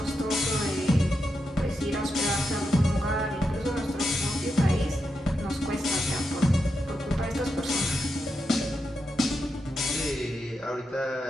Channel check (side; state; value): both; normal; correlation 0.86